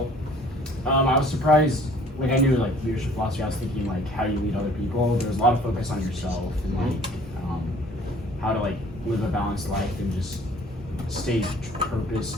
I was surprised. Like I knew leadership philosophy. I was thinking how you lead other people. There was a lot of focus on yourself and how to live a balanced life and just stay purpose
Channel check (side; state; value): both; normal; correlation 0.54